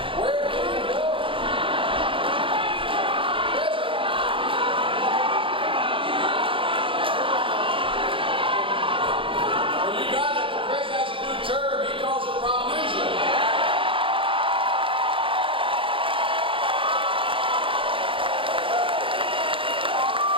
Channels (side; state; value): left; late; 0.25 ms